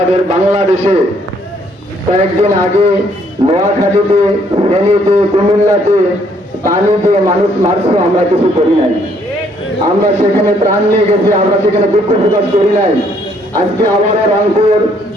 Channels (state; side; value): normal; both; correlation 0.67